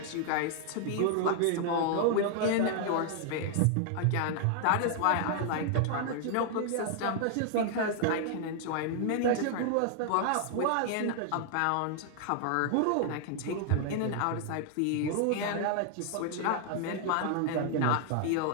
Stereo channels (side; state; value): both; different; correlation 0.00